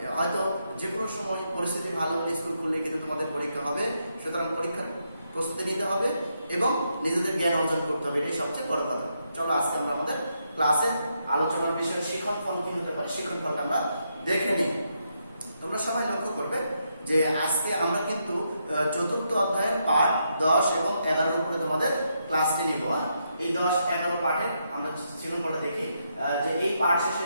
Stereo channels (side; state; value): both; inverted; correlation -0.80